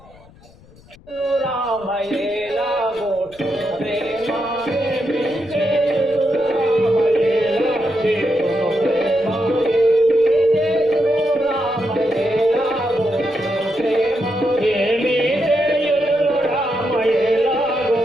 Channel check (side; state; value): left; noise; rumble, 25 dB below the sound